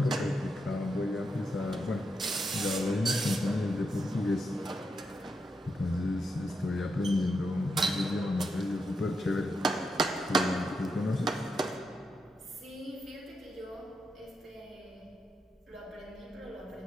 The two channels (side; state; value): both; normal; correlation 0.83